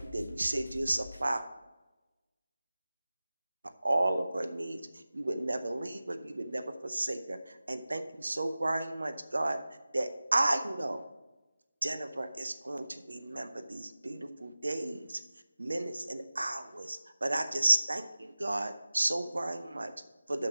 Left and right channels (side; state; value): both; inverted; correlation -0.96